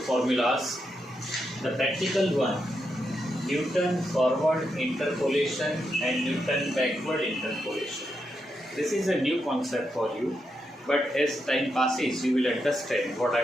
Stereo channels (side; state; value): both; normal; correlation 0.84